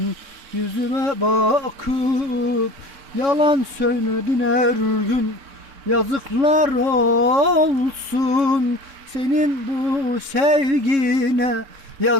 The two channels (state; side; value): late; left; 3.6 ms